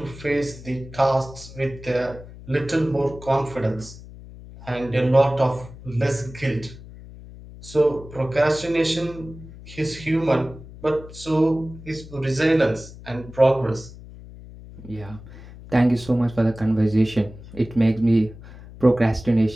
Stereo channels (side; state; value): left; noise; hum, 17 dB below the sound